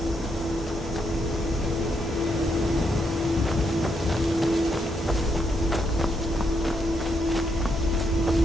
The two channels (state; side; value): normal; both; correlation 0.78